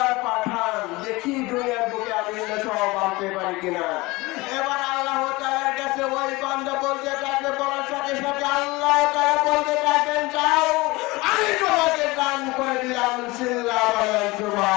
পাঠান, দেখি দুনিয়ার বুকে আমি সব আনতে পারি কিনা। এবার আল্লাহ তাআলার কাছে ওই বান্দা বলতে থাকবে, বলার সাথে সাথে আল্লাহ তাআলা বলতে থাকবেন যাও আমি তোমাকে দান করে দিলাম। সিল্লাহ বলেন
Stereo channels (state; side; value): quieter; right; 22.3 dB